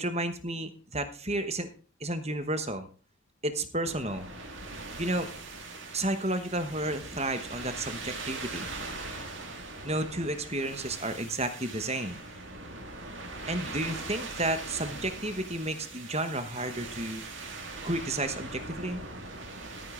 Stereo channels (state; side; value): normal; both; correlation 0.32